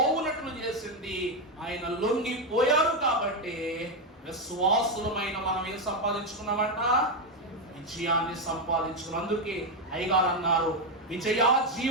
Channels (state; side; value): normal; both; correlation 0.07